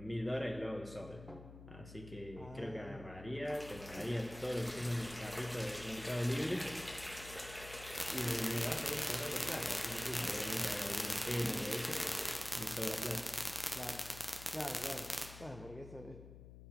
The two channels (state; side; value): noise; left; hum, 14 dB below the sound